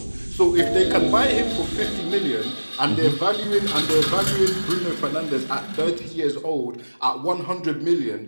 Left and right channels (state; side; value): inverted; both; correlation -1.00